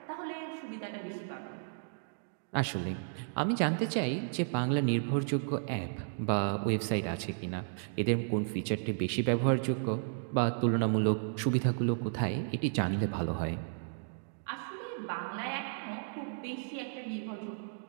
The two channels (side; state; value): left; silent; digital silence